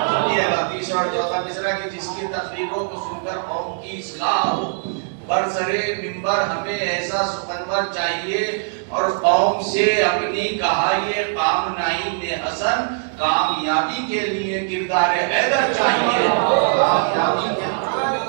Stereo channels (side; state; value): left; silent; digital silence